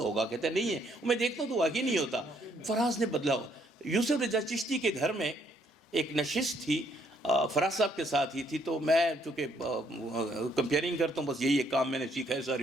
کہتا ہے نہیں ہے. میں دیکھتا ہوں تو واقعی نہیں ہوتا. فراز نے بدلا ہوا. یوسف رضا چشتی کے گھر میں ایک نشست تھی فراز صاحب کے ساتھ ہی تھی. تو میں چونکہ کمپیئرنگ کرتا ہوں، بس یہی ایک کام میں نے سیکھا ہے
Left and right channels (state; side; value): normal; both; correlation 0.69